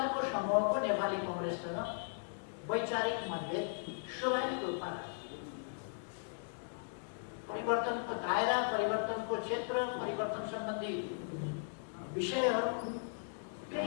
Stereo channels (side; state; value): right; silent; digital silence